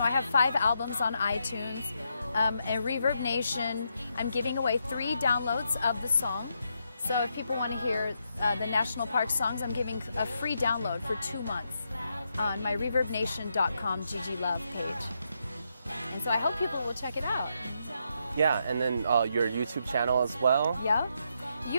I have 5 albums on iTunes. And Reverb Nation, I'm giving away 3 downloads of the song. So if people want to hear the National Park songs, I'm giving a free download for 2 months on my reverbnation.com Gigi Love page. And so I hope people will check it out. Yeah, and then your YouTube channel as well. Yeah.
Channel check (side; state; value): both; inverted; correlation -0.80